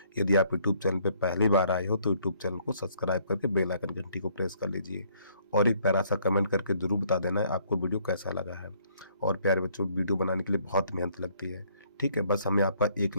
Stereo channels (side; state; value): both; inverted; correlation -0.65